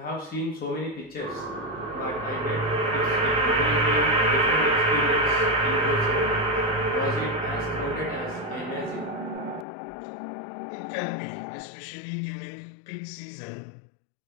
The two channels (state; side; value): drops out; right; at 9.7 s